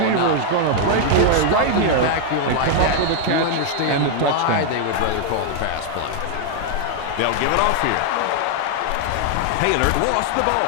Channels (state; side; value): different; both; correlation 0.00